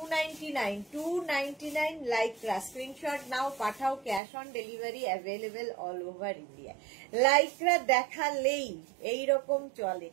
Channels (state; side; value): drops out; left; at 4.2 s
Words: 299 লাইক্রা। স্ক্রিনশট নাও, পাঠাও। Cash on delivery available all over India. Lycra দেখালেই এইরকম চলে।